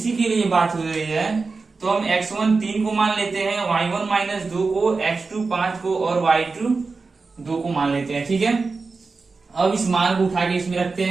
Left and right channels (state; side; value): quieter; left; 4.2 dB